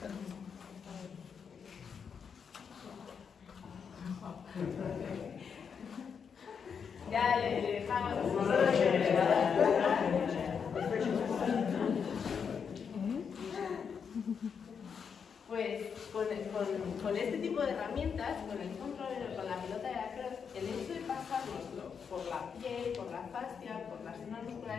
Ya le dejamos pues con este tipo de herramientas, con el control, con la pelota de lacrosse, el hecho de pasárnoslo por la piel, por la fascia, por las zonas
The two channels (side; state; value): right; quieter; 6.6 dB